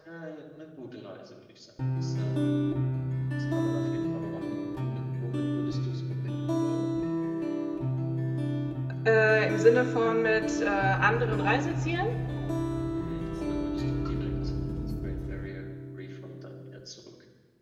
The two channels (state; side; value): identical; both; correlation 1.00